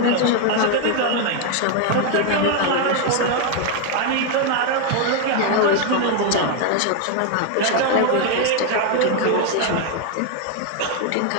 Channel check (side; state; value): both; different; correlation 0.01